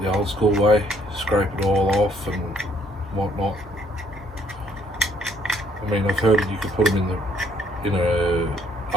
the old school way, scrape it all off and whatnot. I mean, I've heard that you could put them in a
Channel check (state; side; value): normal; both; correlation 0.66